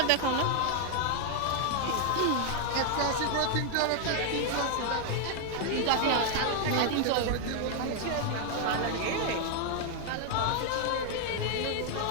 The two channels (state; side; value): different; both; correlation 0.00